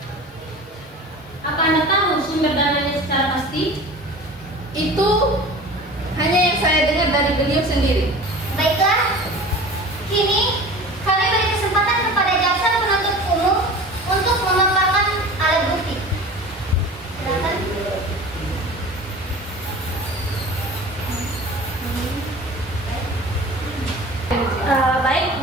Apa Anda tahu sumber dananya secara pasti? Itu hanya yang saya dengar dari beliau sendiri. Baiklah, kini kami beri kesempatan kepada jaksa penuntut umum untuk memaparkan alat bukti. Silakan. Baik,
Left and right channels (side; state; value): both; normal; correlation 0.38